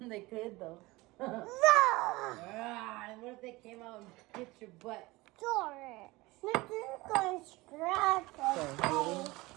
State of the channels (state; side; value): quieter; left; 21.4 dB